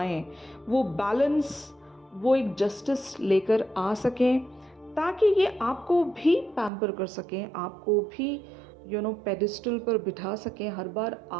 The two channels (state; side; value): drops out; left; at 6.7 s